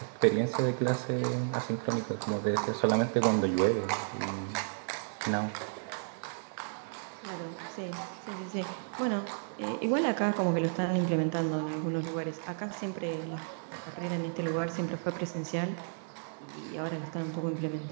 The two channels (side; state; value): left; silent; digital silence